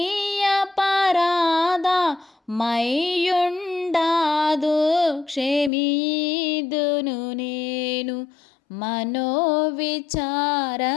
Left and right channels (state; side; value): drops out; right; at 5.7 s